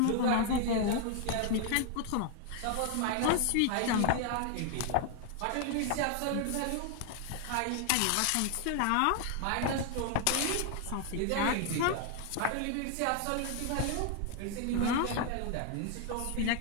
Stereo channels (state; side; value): different; both; correlation 0.00